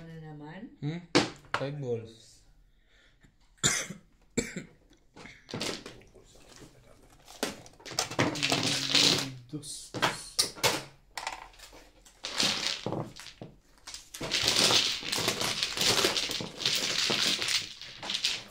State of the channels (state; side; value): identical; both; correlation 1.00